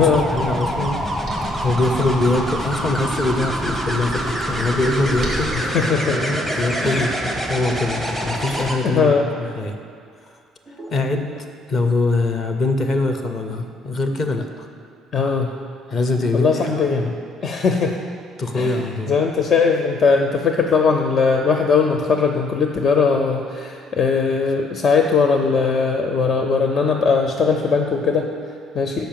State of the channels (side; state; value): right; quieter; 3.3 dB